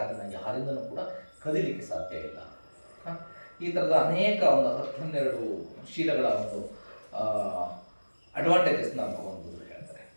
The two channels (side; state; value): both; inverted; correlation -1.00